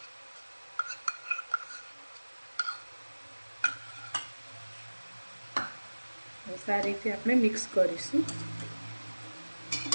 સારી રીતે આપણે મિક્સ કરીશું।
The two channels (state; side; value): inverted; both; correlation -1.00